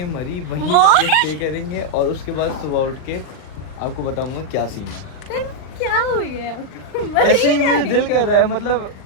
मरी, वहीं What? स्टे करेंगे और उसके बाद सुबह उठ के आपको बताऊंगा क्या सीन है। तो क्या हो गया आपको? ऐसे ही मुझे दिल कर रहा है, मतलब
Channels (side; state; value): right; late; 39 ms